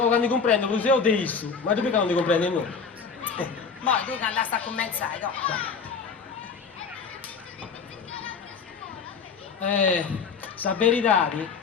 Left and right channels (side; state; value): right; quieter; 5.5 dB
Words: così ho detto. Ma tu perché non ti comprendi noi? Mo' tu che andasti a commenzare, no? Sa verità